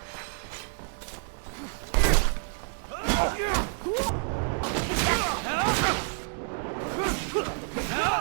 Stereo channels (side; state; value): left; silent; 59 dB below the other